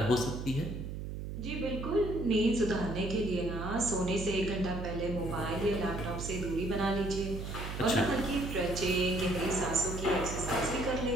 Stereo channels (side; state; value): right; noise; hum, 6 dB below the sound